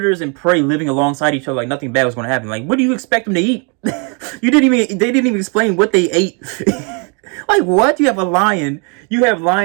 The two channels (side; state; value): left; quieter; 35.8 dB